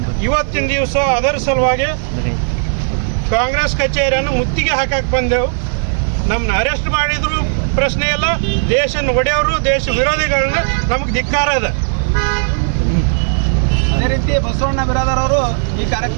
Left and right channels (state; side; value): silent; left; digital silence